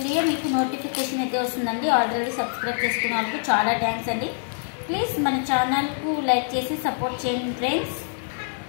మీకు నోటిఫికేషన్ అయితే వస్తుందండి. ఆల్రెడీ సబ్స్క్రైబ్ చేసుకున్న వాళ్ళకు చాలా థ్యాంక్స్ అండి. ప్లీజ్ మన ఛానల్కు లైక్ చేసి సపోర్ట్ చేయండి ఫ్రెండ్స్.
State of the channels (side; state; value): right; silent; digital silence